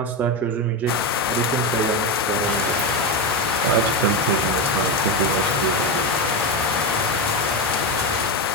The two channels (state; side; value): normal; both; correlation 0.13